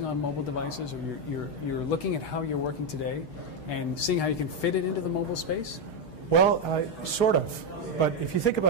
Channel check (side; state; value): right; late; 6.5 ms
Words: on mobile devices, or you're looking at how you're working today and seeing how you can fit it into the mobile space? Well, sort of. But if you think